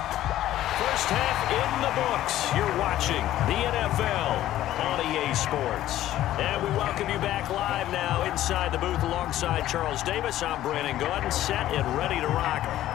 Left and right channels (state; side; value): quieter; right; 13.6 dB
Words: First half in the books. You're watching the NFL on EA Sports. And we welcome you back live now inside the booth alongside Charles Davis. I'm Brandon Gaudin, set and ready to rock